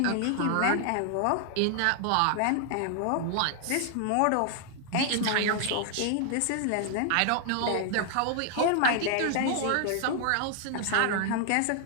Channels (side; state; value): both; different; correlation 0.00